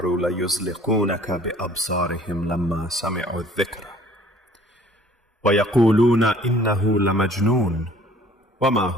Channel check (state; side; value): normal; both; correlation 0.54